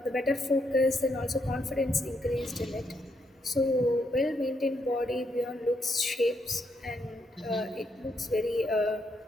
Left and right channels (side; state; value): both; normal; correlation 0.77